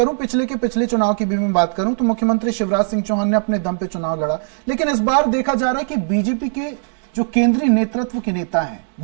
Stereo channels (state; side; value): silent; left; digital silence